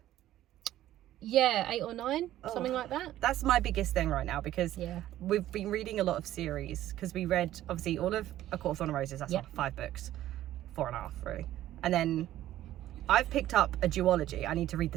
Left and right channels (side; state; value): left; quieter; 13.6 dB